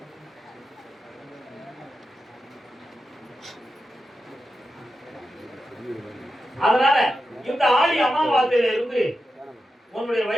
அதனால இந்த ஆடி அமாவாசையில இருந்து உன்னுடைய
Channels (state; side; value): normal; both; correlation 0.90